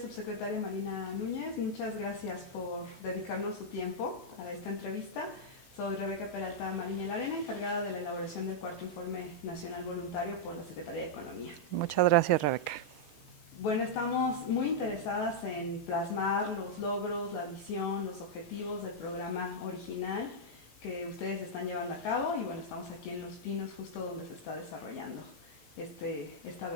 subsecretaria Marina Núñez. Muchas gracias por dedicarnos su tiempo a esta entrevista. Soy Rebeca Peralta Mariña Larena, encargada de la elaboración del cuarto Informe Nacional Voluntario por la Secretaría de Economía. Muchas gracias, Rebeca. Bueno, estamos muy interesadas en plasmar los logros, la visión, los objetivos del programa original que ustedes están llevando a cabo y bueno, estamos aquí en Los Pinos, justo donde se está desarrollando esta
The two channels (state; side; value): late; right; 7.3 ms